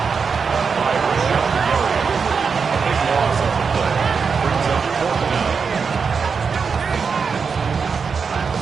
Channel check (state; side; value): quieter; left; 5.6 dB